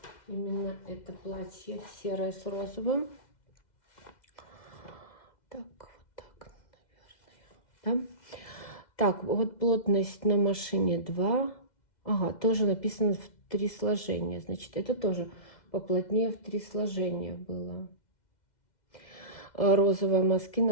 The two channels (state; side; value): late; right; 2.1 ms